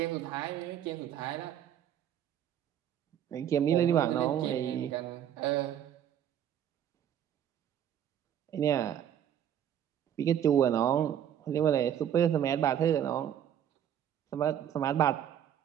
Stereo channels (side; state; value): left; quieter; 10.0 dB